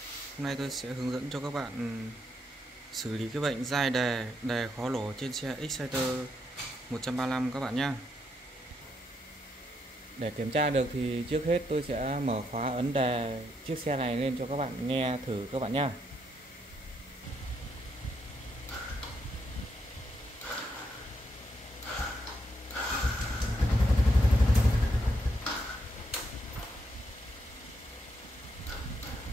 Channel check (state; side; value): normal; both; correlation 0.78